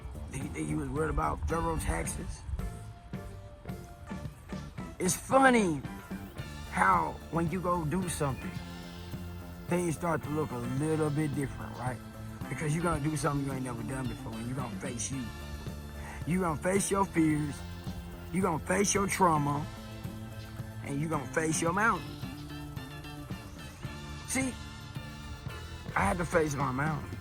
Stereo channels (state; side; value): identical; both; correlation 1.00